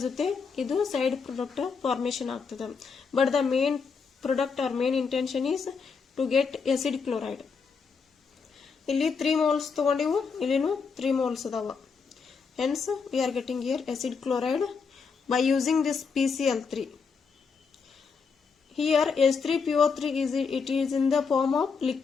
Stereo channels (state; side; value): quieter; right; 5.4 dB